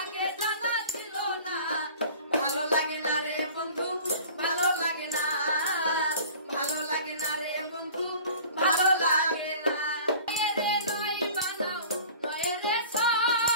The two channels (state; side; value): inverted; both; correlation -0.44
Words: জানা ছিল না। ভালো লাগে না রে বন্ধু, ভালো লাগে না, ভালো লাগে না রে বন্ধু, ভালো লাগে না। রে নয় বানাও নয় রে